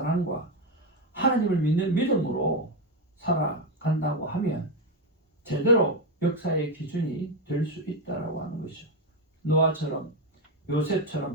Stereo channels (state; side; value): normal; both; correlation 0.09